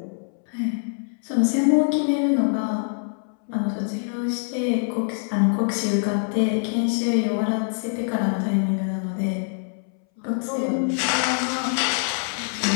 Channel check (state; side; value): silent; right; 62 dB below the other